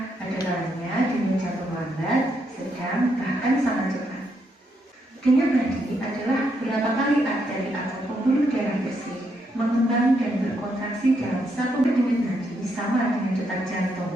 ada kalanya denyut jantung lambat, sedang, bahkan sangat cepat. Denyut nadi adalah berapa kali arteri atau pembuluh darah bersih mengembang dan berkontraksi dalam satu denyut nadi sama dengan detak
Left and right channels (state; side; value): normal; both; correlation 0.78